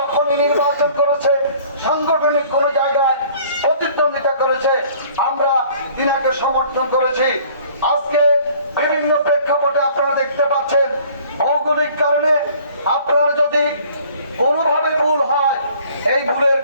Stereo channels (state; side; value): inverted; both; correlation -0.54